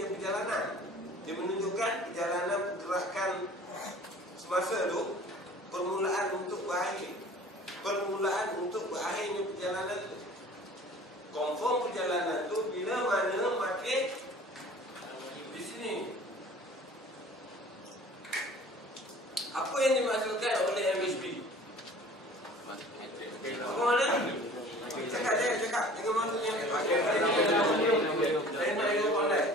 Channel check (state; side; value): normal; both; correlation 0.46